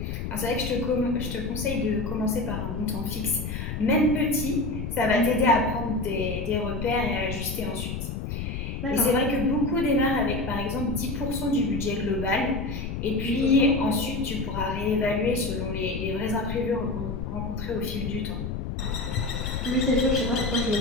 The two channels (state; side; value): noise; left; rumble, 5 dB below the sound